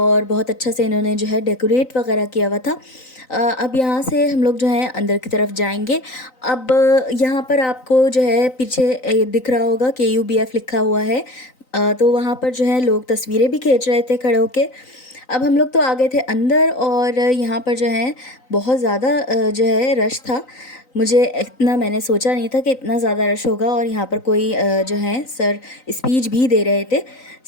बहुत अच्छा से इन्होंने जो है डेकोरेट वगैरह किया हुआ था। अब यहाँ से हम लोग जो है अंदर की तरफ जाएंगे। अब यहाँ पर आपको जो है पीछे दिख रहा होगा KUBF लिखा हुआ है। तो वहाँ पर जो है लोग तस्वीरें भी खींच रहे थे खड़े होके। अब हम लोग तो आ गए थे अंदर और यहाँ पर जो है बहुत ज़्यादा जो है रश था। मुझे इतना मैंने सोचा नहीं था कि इतना ज़्यादा रश होगा। और यहाँ पर कोई जो है सर स्पीच भी दे रहे थे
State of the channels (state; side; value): late; right; 3.9 ms